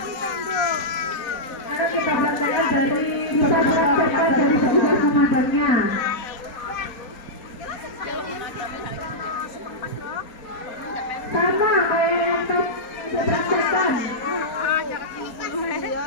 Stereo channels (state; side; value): late; right; 4.2 ms